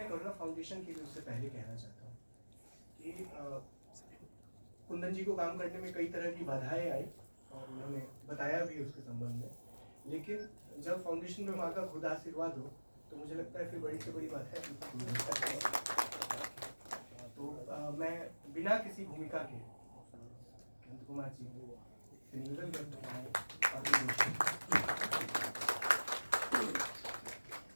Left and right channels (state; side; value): inverted; both; correlation -1.00